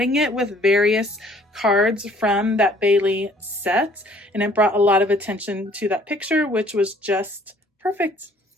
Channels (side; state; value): both; normal; correlation 0.58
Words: it with various cards from that Bailey set, and it brought a lot of attention to that picture, which was just perfect.